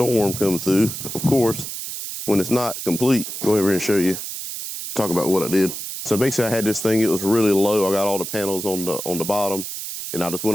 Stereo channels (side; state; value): right; noise; hiss, 7 dB below the sound